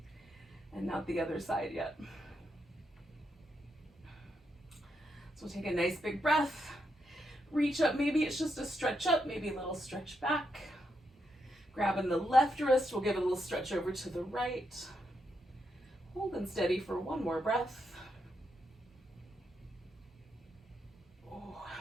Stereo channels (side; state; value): both; normal; correlation 0.82